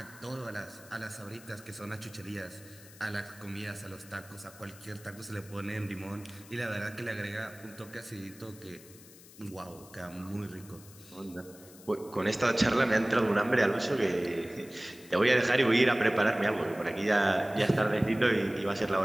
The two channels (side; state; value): left; noise; hiss, 21 dB below the sound